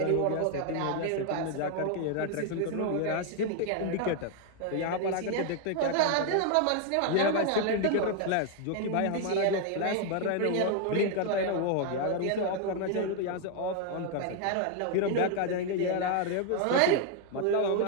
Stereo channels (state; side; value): different; both; correlation 0.00